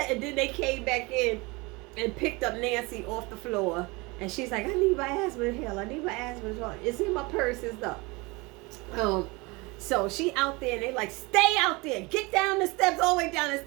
they came back in and picked up Nancy off the floor. And she's like, I need my asthma inhaler. It's in my purse and stuff. So she out there, and they like, stay out there. Get down the steps, all the way down the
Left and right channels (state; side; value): quieter; left; 25.3 dB